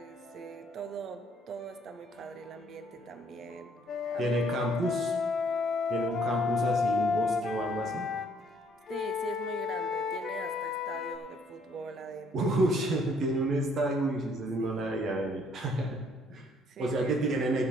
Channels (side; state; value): both; normal; correlation 0.64